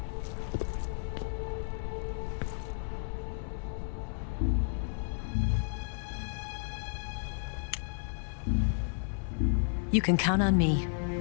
You can count on me.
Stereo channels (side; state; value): right; silent; digital silence